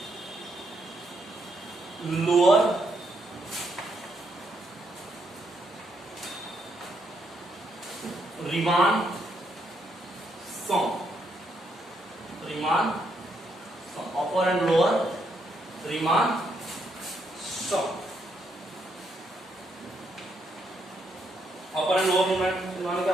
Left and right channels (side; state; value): both; normal; correlation 0.76